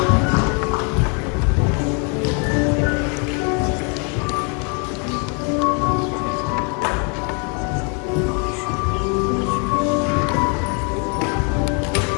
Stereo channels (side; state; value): right; quieter; 36.3 dB